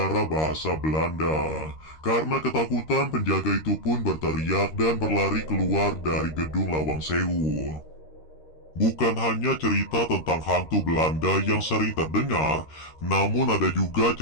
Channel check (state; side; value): late; right; 13 ms